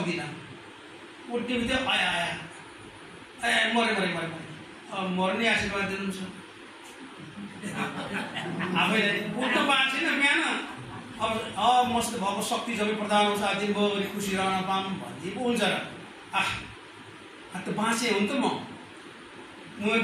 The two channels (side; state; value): both; identical; correlation 1.00